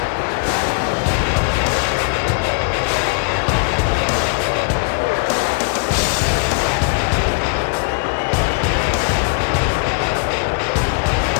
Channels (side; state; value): right; quieter; 32.6 dB